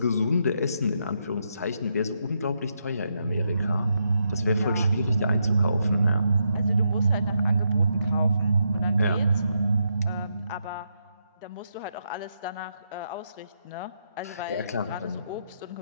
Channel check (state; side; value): inverted; both; correlation -0.81